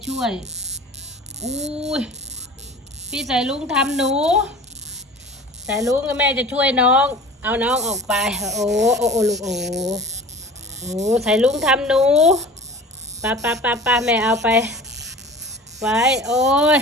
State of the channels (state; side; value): normal; both; correlation 0.40